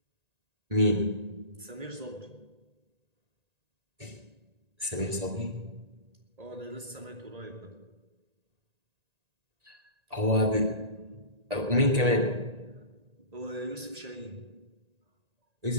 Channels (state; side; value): late; left; 1.9 ms